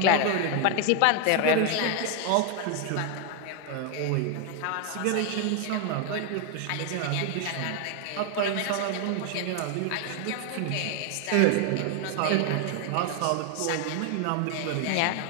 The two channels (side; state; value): both; different; correlation 0.00